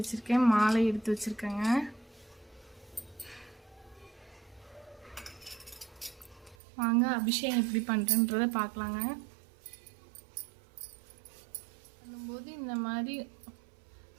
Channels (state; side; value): drops out; left; at 6.6 s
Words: வச்சுருக்கேன், மாலை எடுத்து வச்சுருக்கேங்க. வாங்க அபிஷேகம் எப்படி பண்ணுறேன்றதை பார்க்கலாங்க. பண்ணும்போது இந்த மாதிரி